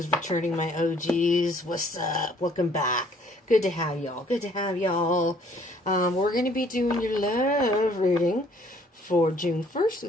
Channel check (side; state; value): both; normal; correlation 0.60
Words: returning, my OGs, what's up? Welcome back. Good to have y'all. Good to have y'all. We're going to be doing your love reading for June 1st through